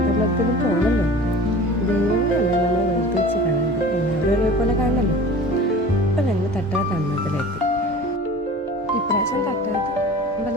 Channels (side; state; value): both; normal; correlation 0.40